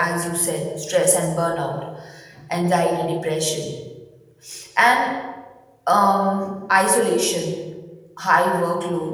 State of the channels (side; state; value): both; identical; correlation 1.00